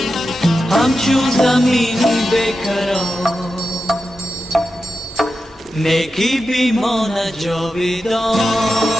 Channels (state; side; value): normal; both; correlation 0.91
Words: همچون زمین بیکران، نیکی بیمانه جاویدان.